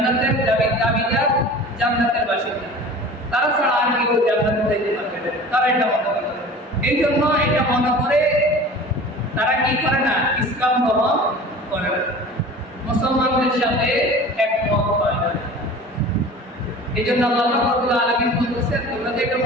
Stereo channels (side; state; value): both; normal; correlation 0.40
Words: দাবিদার, জান্নাতের বাসিন্দা, তারা ছাড়া আর কেউ জান্নাতে যাইতে পারবে না, তারা এটা মনে করে। এই জন্য এটা মনে করে তারা কি করে না, ইসলাম গ্রহণ করে না, মুসলমানদের সাথে একমত হয় না। এই জন্য আল্লাহ রাব্বুল আলামিন বলতেছেন, তোমরা যদি এটা